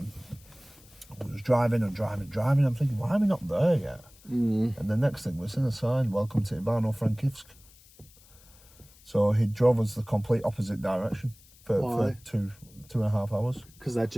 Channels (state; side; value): noise; left; hiss, 26 dB below the sound